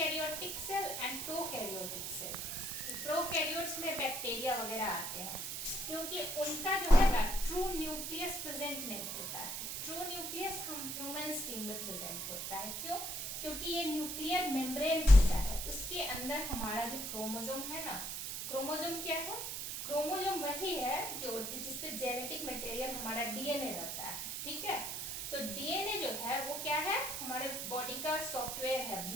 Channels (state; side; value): noise; right; hiss, 4 dB below the sound